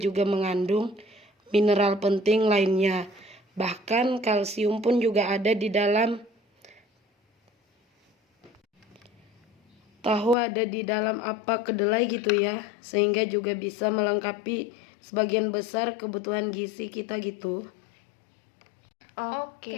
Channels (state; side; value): drops out; right; at 10.4 s